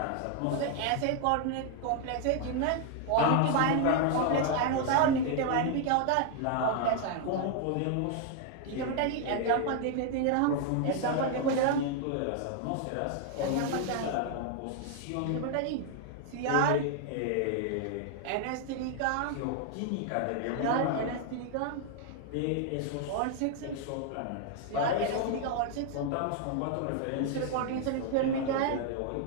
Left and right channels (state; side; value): different; both; correlation 0.00